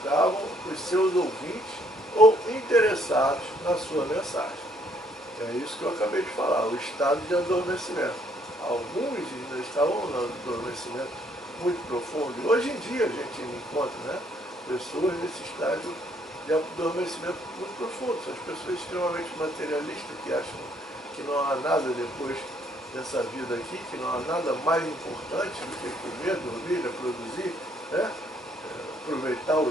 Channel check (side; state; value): both; normal; correlation 0.67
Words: os seus ouvintes ou interessados na sua mensagem. É isso que eu acabei de falar, o estado de adormecimento. Alguns ainda estavam no adormecimento muito profundo, e hoje em dia a gente encontra, né, pessoas nesse estágio de adormecimento muito profundo. São as pessoas extremamente materialistas, que acham que não há nada depois dessa vida aqui, que não há nada mais importante do que comer, dormir, reproduzir, né? Aproveitar